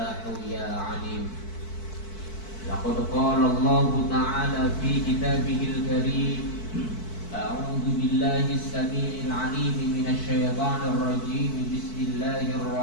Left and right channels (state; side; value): late; right; 4.5 ms